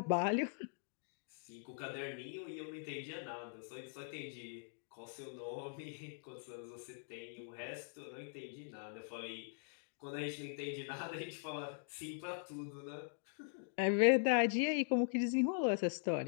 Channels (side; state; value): right; silent; digital silence